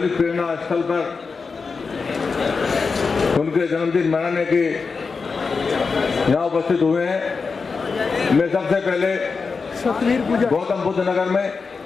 प्रेरणा स्थल पर उनके जन्मदिन मनाने के यहाँ उपस्थित हुए हैं। मैं सबसे पहले गौतम बुद्ध नगर में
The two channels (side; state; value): right; quieter; 4.8 dB